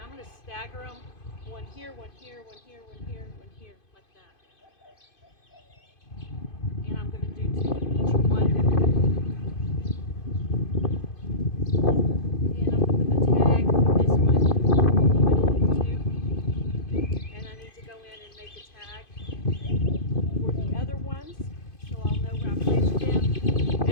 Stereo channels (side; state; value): right; late; 2.5 ms